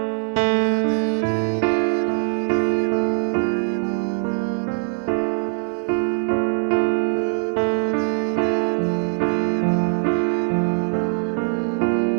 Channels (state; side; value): silent; left; 64 dB below the other